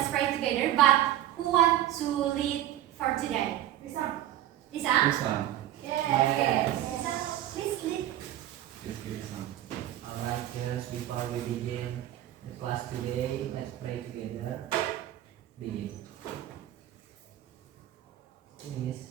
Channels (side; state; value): left; quieter; 12.9 dB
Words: pray together. But who wants to lead for today? Lisa. Lisa? Lisa. Okay. Lisa, please lead. Alright, girls, before we begin the class today, let's pray together. Begin. Please.